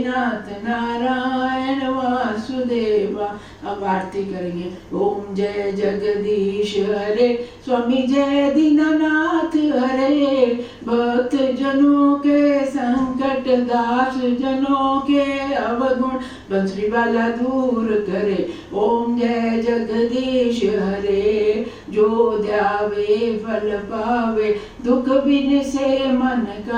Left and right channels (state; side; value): identical; both; correlation 1.00